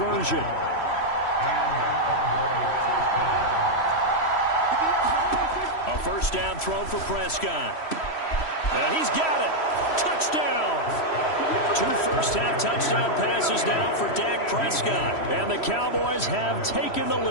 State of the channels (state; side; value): late; right; 3.1 ms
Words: A first down throw for Prescott. And he's got it. Touchdown. 2 first-half touchdown passes now for Dak Prescott. And the Cowboys have taken the